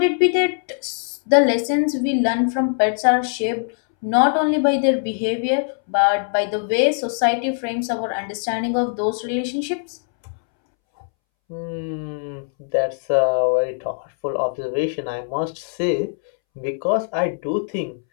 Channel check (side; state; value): right; silent; 65 dB below the other